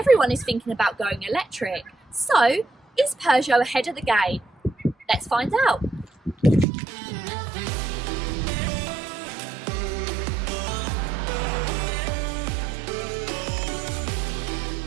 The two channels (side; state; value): left; drops out; at 6.7 s